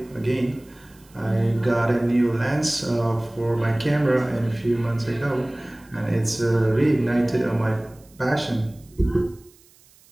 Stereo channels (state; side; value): noise; right; hiss, 29 dB below the sound